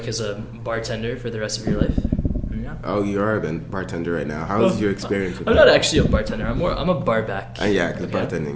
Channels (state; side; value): identical; both; correlation 1.00